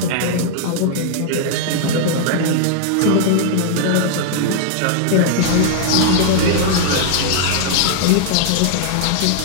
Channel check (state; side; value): different; both; correlation -0.01